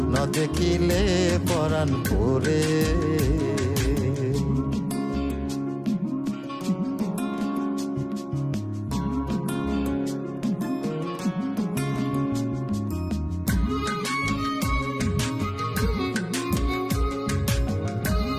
না দেখিলে পরাণ পরে।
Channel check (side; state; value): both; identical; correlation 1.00